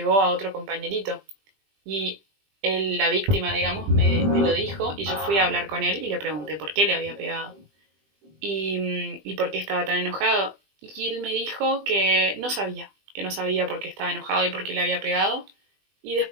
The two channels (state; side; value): late; left; 20 ms